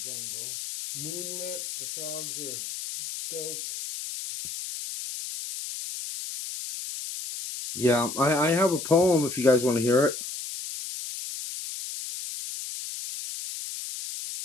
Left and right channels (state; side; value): noise; left; hiss, 8 dB below the sound